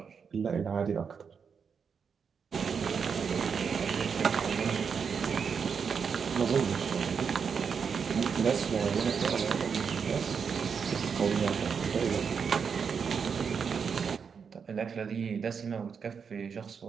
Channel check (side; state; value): left; quieter; 6.3 dB